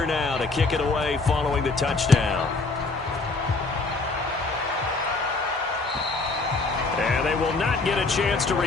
now to kick it away following the touchdown. And they will not get a chance to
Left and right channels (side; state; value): right; quieter; 3.6 dB